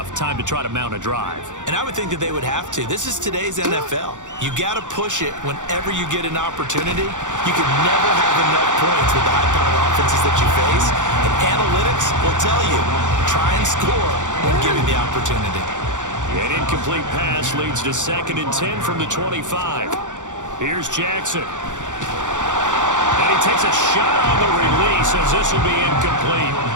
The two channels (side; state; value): left; late; 0.86 ms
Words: Time to try to mount a drive. And I would think that they would have to. This is today's NFL. You got to push it whenever you get an opportunity. You can never have enough points with the high-powered offenses that you face. And analytics will tell you, try and score when given the opportunity. An incomplete pass leads to 2nd and 10 from the 25. Here's Jackson. And he takes a shot on the release as this will be incomplete.